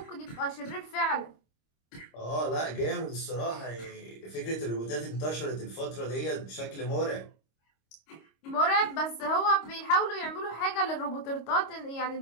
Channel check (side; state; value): right; late; 25 ms